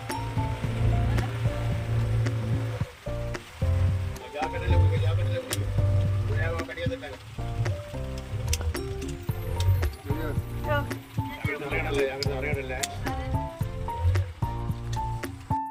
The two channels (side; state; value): both; identical; correlation 1.00